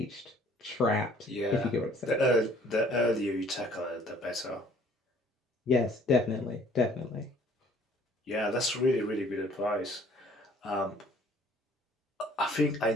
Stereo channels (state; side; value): normal; both; correlation 0.56